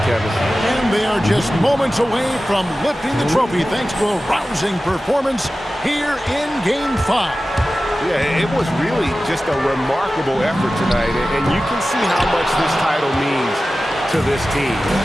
Kevin. And they are just moments away from lifting the trophy thanks to a rousing performance here in Game 5. Yeah, it was really just a remarkable effort tonight, and you can see how much this title means to this team.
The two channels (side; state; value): both; normal; correlation 0.95